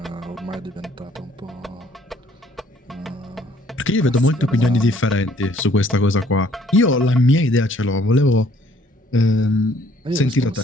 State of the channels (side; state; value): both; normal; correlation 0.62